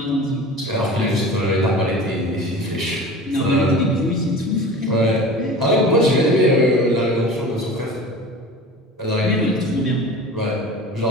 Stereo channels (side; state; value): both; normal; correlation 0.37